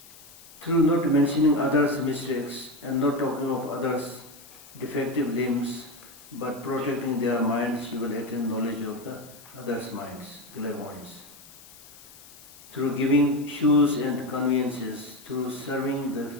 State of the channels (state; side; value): noise; left; hiss, 21 dB below the sound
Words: Through not mentioning others' mistakes and not talking of others' defective limbs but protecting their minds, you will attain knowledge of the others' minds, clairvoyance. Through giving shoes and conveniences, through serving the